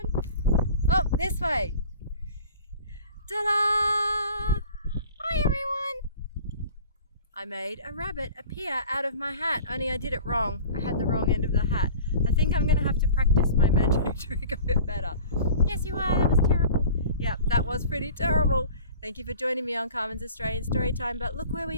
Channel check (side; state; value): both; inverted; correlation -0.42